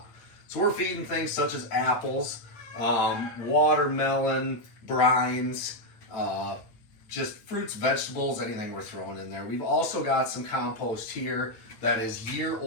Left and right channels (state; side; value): late; right; 8.8 ms